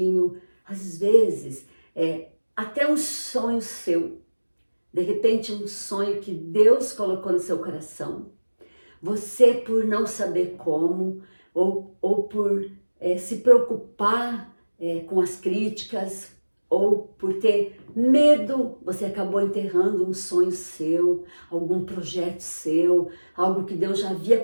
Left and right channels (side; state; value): both; inverted; correlation -1.00